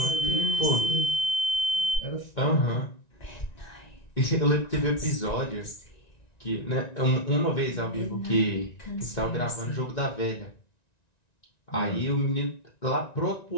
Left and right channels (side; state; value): right; late; 1.9 ms